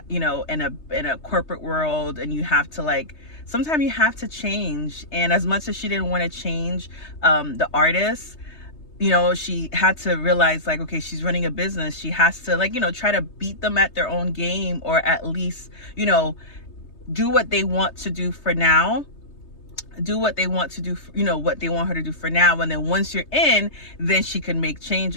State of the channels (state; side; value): late; right; 3.2 ms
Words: in a corporate world, and you have to, sometimes you have to change. And as much as she didn't want to change the artist, she had to realize, okay, she's running a business. She has to, try to beat them at their own game, or at least, do what they want to do for now. Do what they want to do, what they want her to do for now. And then once you're in, then she can make